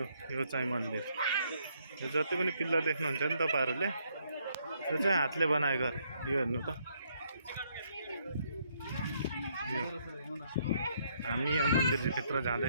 यो चाहिँ मन्दिर, यो जति पनि पिल्लर देख्नुहुन्छ नि तपाईँहरूले, यो चाहिँ हातले बनाएको अरे। यो हेर्नु त, यो हामी यहाँ मन्दिरभित्र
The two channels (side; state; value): both; inverted; correlation -0.70